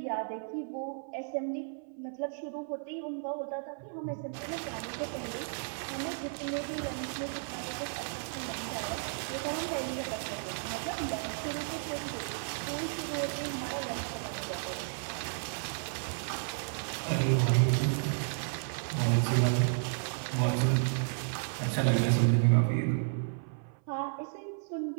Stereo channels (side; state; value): left; silent; 56 dB below the other